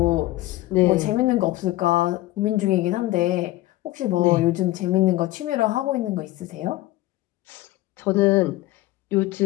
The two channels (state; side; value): quieter; right; 17.1 dB